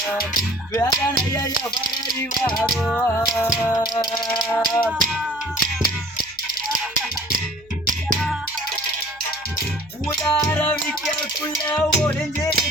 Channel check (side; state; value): right; noise; hum, 28 dB below the sound